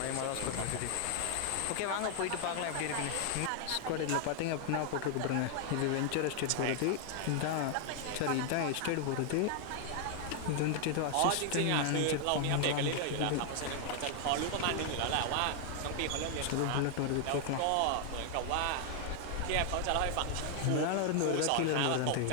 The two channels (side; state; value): both; different; correlation 0.00